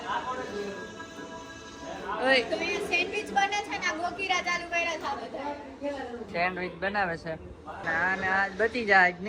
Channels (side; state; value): both; identical; correlation 1.00